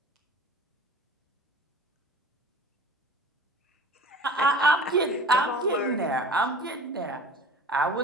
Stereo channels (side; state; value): both; normal; correlation 0.41